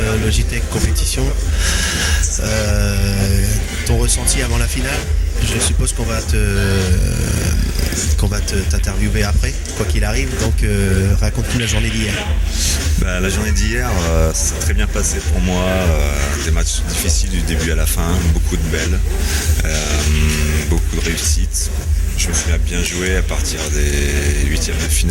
Logitech Compétition. Ton ressenti avant la finale? Je suppose qu'on va t'interviewer après, quoi qu'il arrive. Donc raconte-nous la journée d'hier. La journée d'hier, ça s'est très bien passé pour moi. Des matchs difficiles du début à la fin, beaucoup de belles, beaucoup de réussites. Je me suis bien joué à partir des huitièmes de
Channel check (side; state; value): both; identical; correlation 1.00